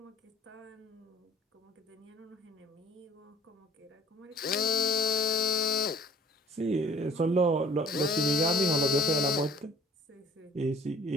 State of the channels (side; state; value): both; normal; correlation 0.51